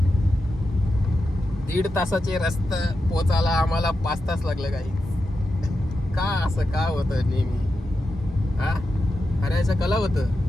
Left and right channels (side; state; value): both; normal; correlation 0.89